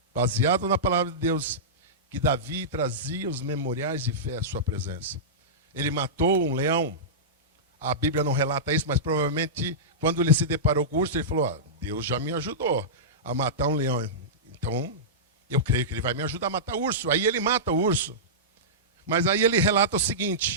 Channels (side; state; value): both; normal; correlation -0.16